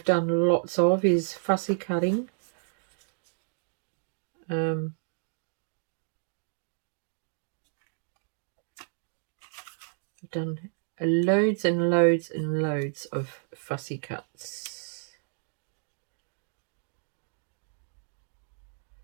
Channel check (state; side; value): silent; left; digital silence